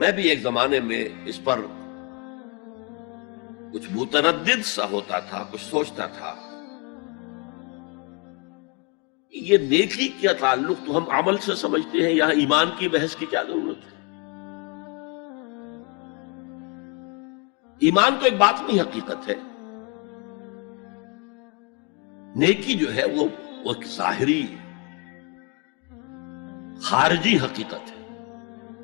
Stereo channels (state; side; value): quieter; right; 31.4 dB